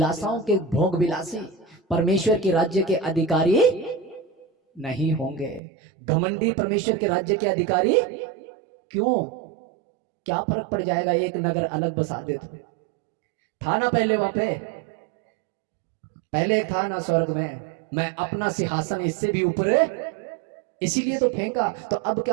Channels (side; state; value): left; drops out; at 5.6 s